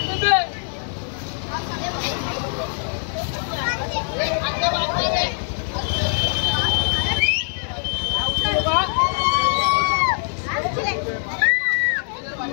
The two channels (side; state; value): right; silent; 62 dB below the other